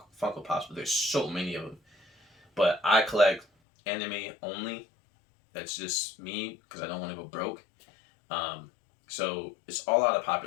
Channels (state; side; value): drops out; right; at 3.5 s